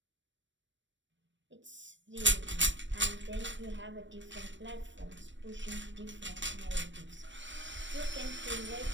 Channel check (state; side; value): late; left; 0.54 ms